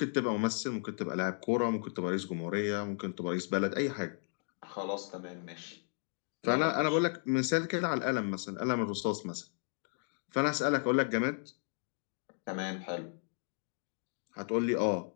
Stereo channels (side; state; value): right; silent; digital silence